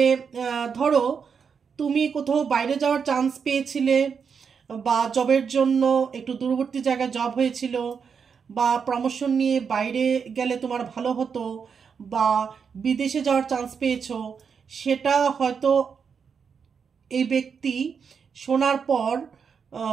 ধরো তুমি কোথাও বাইরে যাওয়ার চান্স পেয়েছিলে, বা জবের জন্য একটু দূরবর্তী জায়গায় জব হয়েছিল, বা প্রমোশন নিয়ে বাইরে গেলে তোমার ভালো হতো, বা বিদেশে যাওয়ার চান্স পেয়েছো, সেটা হয়তো এই ব্যক্তি শোনার পর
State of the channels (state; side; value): quieter; left; 6.3 dB